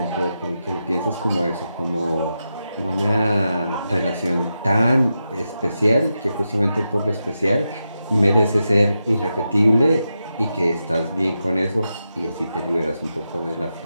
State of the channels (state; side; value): inverted; both; correlation -0.88